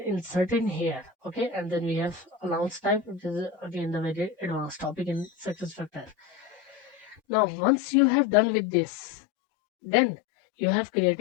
insert in here. Okay, and then we have allowance type, which is again the very advanced topic in SuccessFactors. Now once you have done with this, then you have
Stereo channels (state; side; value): drops out; right; at 7.2 s